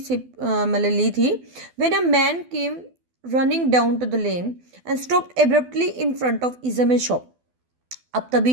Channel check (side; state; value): left; late; 12 ms